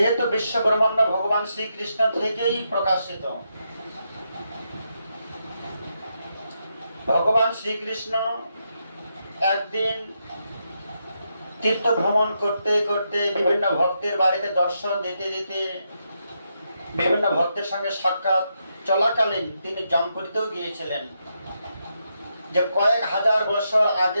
বিশ্ব ব্রহ্মাণ্ড ভগবান শ্রীকৃষ্ণ থেকেই প্রকাশিত, ভগবান শ্রীকৃষ্ণ একদিন তীর্থ ভ্রমণ করতে করতে বিভিন্ন ভক্তের বাড়িতে দর্শন দিতে দিতে বিভিন্ন ভক্তের সঙ্গে সাক্ষাৎ চলাকালীন তিনি জমপুরীতেও গিয়েছিলেন। যে কয়েক হাজার বছর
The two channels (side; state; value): both; inverted; correlation -0.82